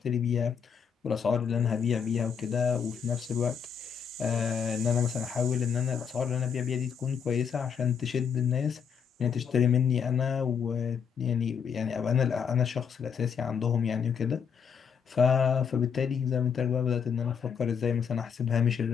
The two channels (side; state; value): right; quieter; 7.0 dB